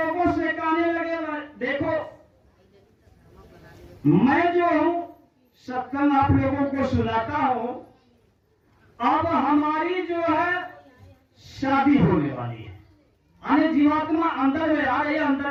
से कहने लगे देखो मैं जो हूं सत्संग आप लोगों को सुनाता हूं, अब हमारी जो है शादी होने वाली है, यानी जीवात्मा अंदर में आ रही है, अंदर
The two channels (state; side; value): identical; both; correlation 1.00